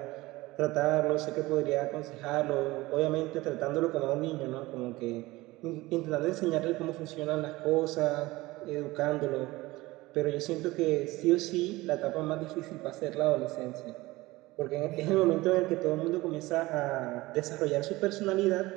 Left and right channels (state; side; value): quieter; left; 19.8 dB